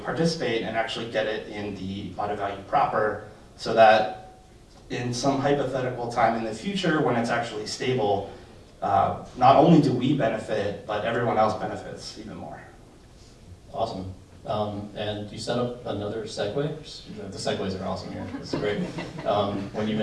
and actually get it in the auto value proper, so that in some hypothetical time in the future when it's actually stable, not only do we benefit, but everyone else benefits even more. Awesome. And you set up another segue. The segues are awesome here. It's great. When you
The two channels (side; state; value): both; identical; correlation 1.00